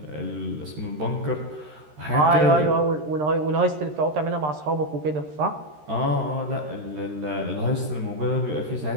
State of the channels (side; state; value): left; late; 13 ms